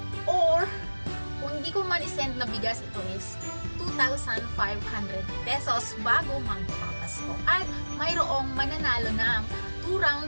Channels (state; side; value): inverted; both; correlation -1.00